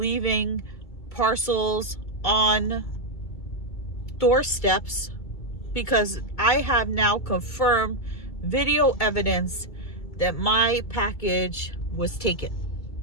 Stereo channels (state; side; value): late; right; 2.5 ms